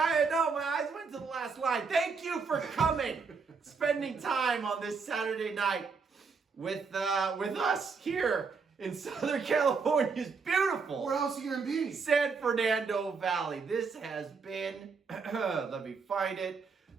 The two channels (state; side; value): quieter; left; 5.1 dB